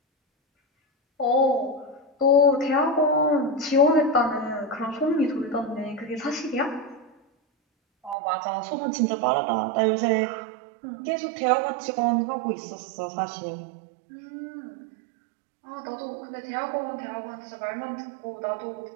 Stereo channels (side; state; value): left; drops out; at 8.2 s